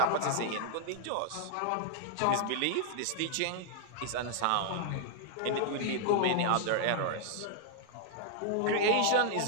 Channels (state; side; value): different; both; correlation 0.00